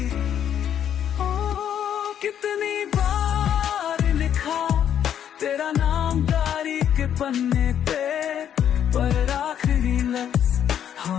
कितनी बार लिखा तेरा नाम डायरी के पन्ने पे, पर आखिरी लफ्ज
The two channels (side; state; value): right; quieter; 9.5 dB